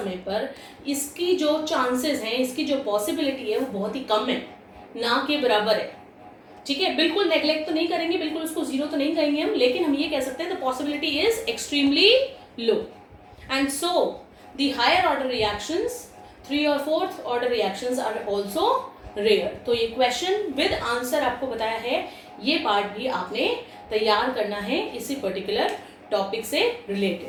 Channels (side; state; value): both; identical; correlation 1.00